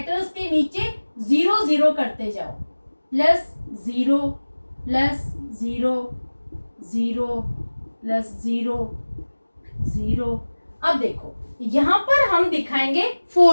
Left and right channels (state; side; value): inverted; both; correlation -1.00